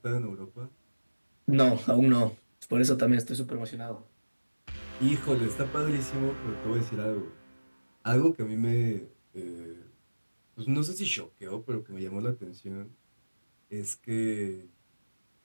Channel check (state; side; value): inverted; both; correlation -1.00